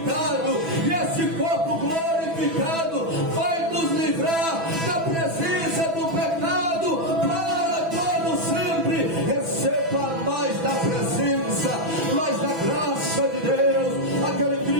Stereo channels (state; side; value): late; left; 6.1 ms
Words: e esse corpo glorificado vai nos livrar da presença do pecado para todo sempre. Receba mais da presença, mais da graça de Deus. Aquele